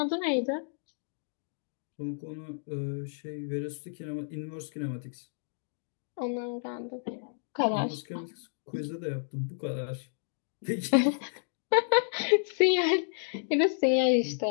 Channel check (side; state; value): right; silent; digital silence